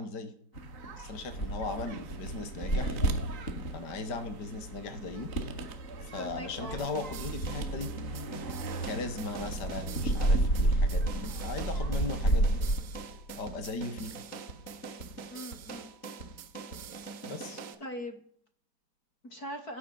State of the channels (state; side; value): late; right; 4.2 ms